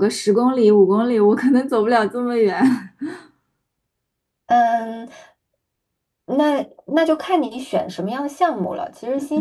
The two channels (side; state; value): both; identical; correlation 1.00